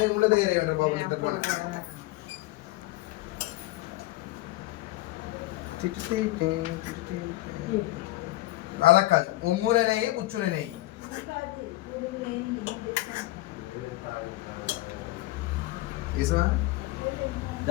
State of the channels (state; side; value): quieter; right; 18.3 dB